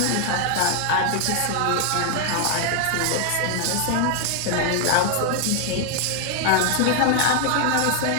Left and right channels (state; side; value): different; both; correlation 0.00